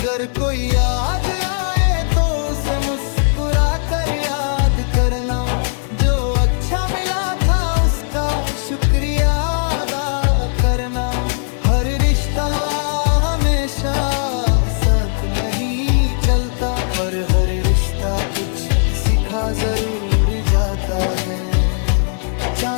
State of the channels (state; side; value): silent; right; digital silence